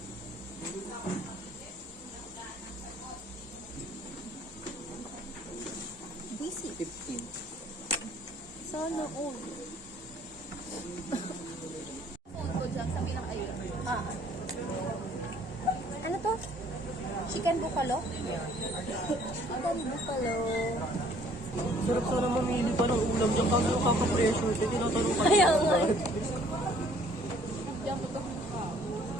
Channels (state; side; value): normal; both; correlation 0.58